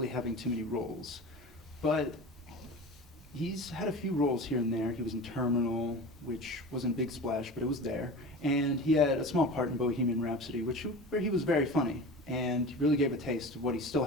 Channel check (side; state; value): both; normal; correlation 0.33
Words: having too many roles. But he's had a few roles here and there. He was in Terminal, which wasn't a big splash, but it was there. And he had a small part in Bohemian Rhapsody, where he was very funny and really gave a taste of what he still